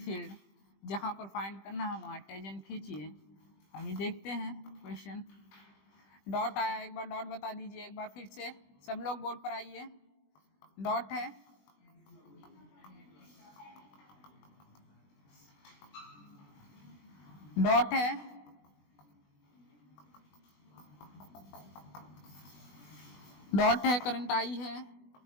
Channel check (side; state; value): right; late; 20 ms